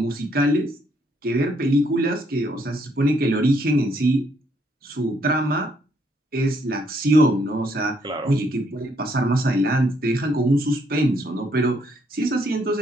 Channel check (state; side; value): normal; both; correlation 0.71